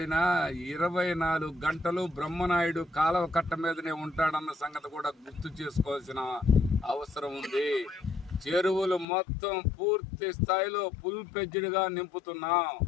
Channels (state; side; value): drops out; right; at 9.1 s